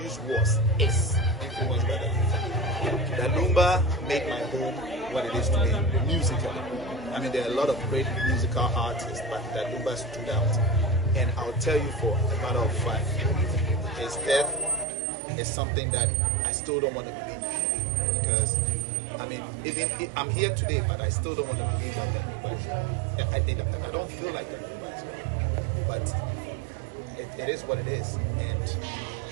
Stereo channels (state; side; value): drops out; left; at 14.9 s